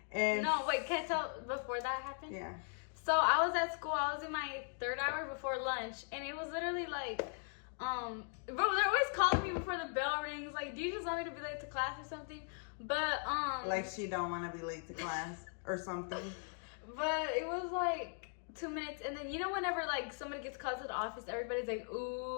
And no, wait, can I tell before that happened? Yeah. So I was at school. I was in my 3rd hour before lunch, and it was literally like, bro, they're always calling me before the bell rings. Like, do you just want me to be late to class or something? But like she don't want to be late to class or something. But it was like 2 minutes, and then, you know, whenever like somebody gets called to the office, everybody's like,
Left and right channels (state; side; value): silent; right; 52 dB below the other